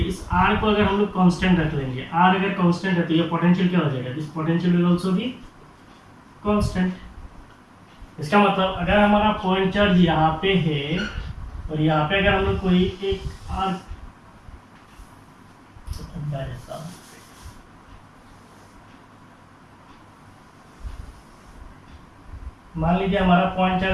इस r को अगर हम लोग कांस्टेंट रख लेंगे, r अगर कांस्टेंट है तो ये पोटेंशियल क्या हो जाएगा? This potential will also be constant. इसका मतलब अगर हमारा पॉइंट चार्ज यहाँ पे है और यहाँ पे अगर हम लोग कोई एक आर मान लीजिए हमारा पॉइंट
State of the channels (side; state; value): both; identical; correlation 1.00